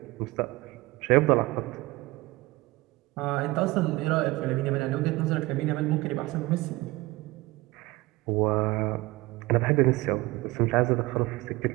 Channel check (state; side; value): quieter; left; 20.8 dB